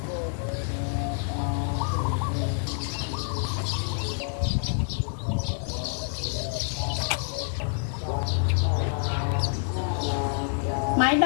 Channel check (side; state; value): right; silent; 56 dB below the other